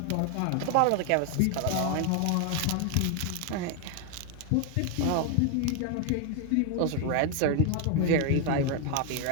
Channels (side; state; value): both; different; correlation 0.01